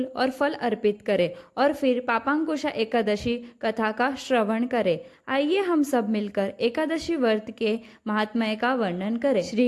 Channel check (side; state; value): both; identical; correlation 1.00